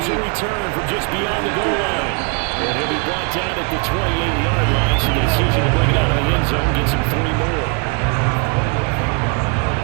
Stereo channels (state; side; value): quieter; left; 33.5 dB